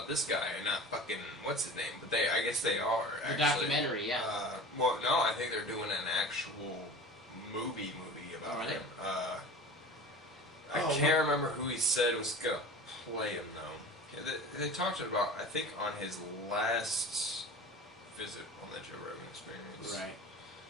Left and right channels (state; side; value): normal; both; correlation 0.37